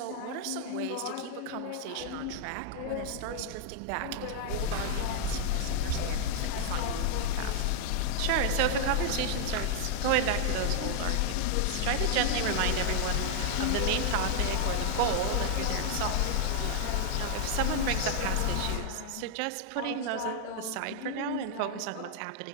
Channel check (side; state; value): both; different; correlation 0.00